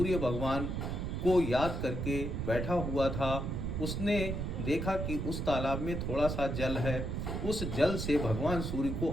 भगवान को याद करके बैठा हुआ था। उसने देखा कि उस तालाब में थोड़ा सा जल है। उस जल से भगवान सूर्य को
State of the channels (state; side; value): noise; right; rumble, 2 dB below the sound